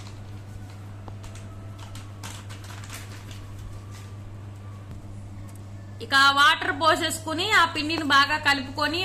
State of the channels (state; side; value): identical; both; correlation 1.00